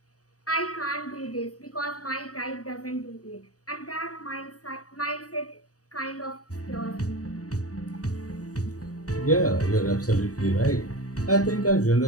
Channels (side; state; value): right; late; 0.66 ms